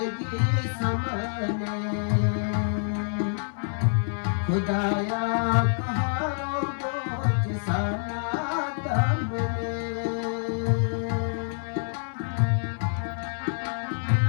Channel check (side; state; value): right; silent; 60 dB below the other